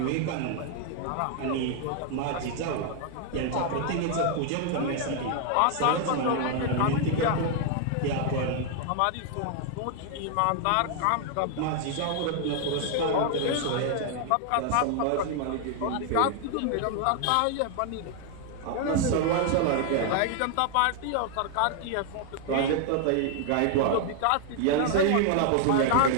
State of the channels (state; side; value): different; both; correlation 0.00